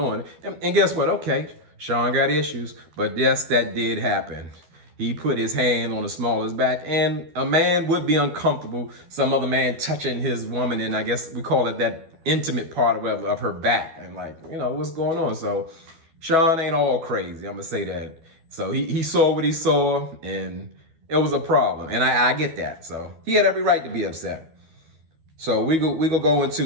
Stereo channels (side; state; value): left; late; 12 ms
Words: And guess what? Okay, Sean got issues. But yes, that did happen. He put his hand on the small of his back, and a man would be uncomfortable, some other man touching his woman, and I guess we call it that intimate part of her back, and like, what's going on? So Sean ain't all crazy, I'm gonna say that. So he saw what he saw, and it was a problem, and I get that. So he had every right to be upset. So we go